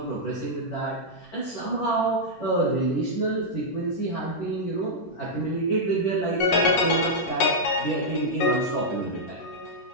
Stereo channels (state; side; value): late; right; 11 ms